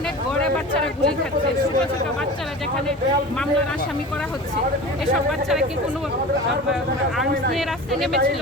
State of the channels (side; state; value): both; normal; correlation 0.35